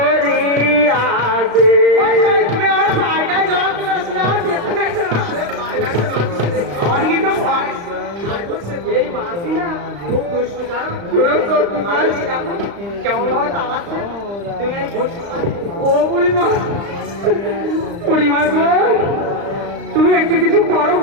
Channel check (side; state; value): left; late; 35 ms